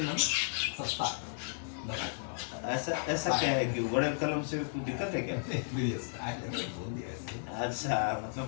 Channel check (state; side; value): silent; right; digital silence